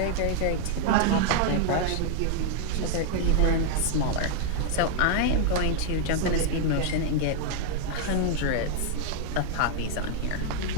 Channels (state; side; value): different; both; correlation -0.01